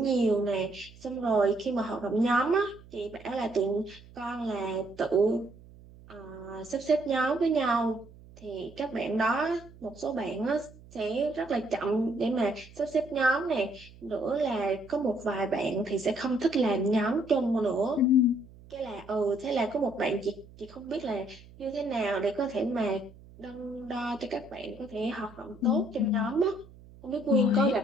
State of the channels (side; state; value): right; noise; hum, 21 dB below the sound